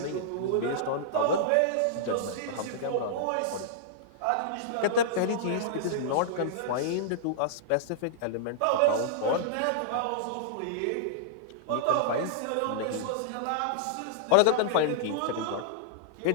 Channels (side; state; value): both; different; correlation -0.02